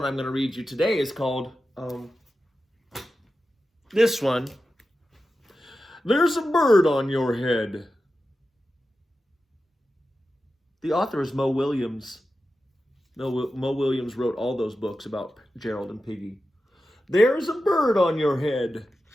I'm going to read you today is called this one. There's a bird on your head. The author is Mo Willems. Mo Willems wrote all those books about Gerald and Piggy. There's a bird on your head.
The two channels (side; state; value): both; normal; correlation 0.92